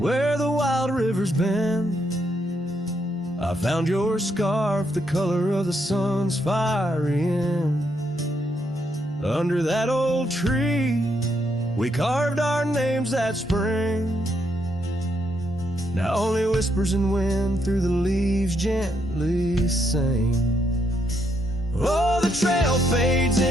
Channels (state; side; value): normal; both; correlation 0.76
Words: the wild river's bend, I found your scarf, the color of the sun's fiery end. Under that old tree, we carved our names that spring. Now only whispers and wind through the leaves gently sing. Oh, the trail fades